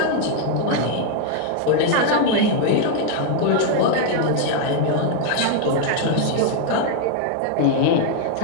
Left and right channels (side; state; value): both; different; correlation 0.00